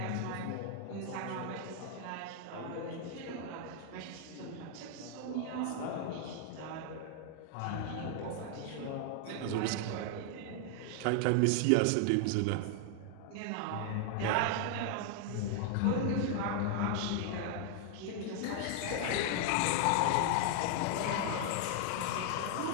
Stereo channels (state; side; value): different; both; correlation 0.00